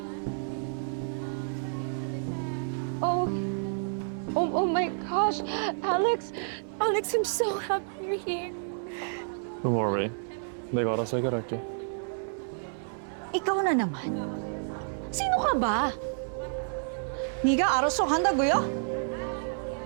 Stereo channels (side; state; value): left; silent; 56 dB below the other